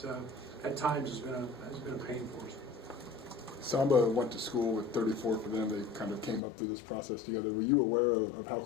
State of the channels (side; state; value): right; drops out; at 6.4 s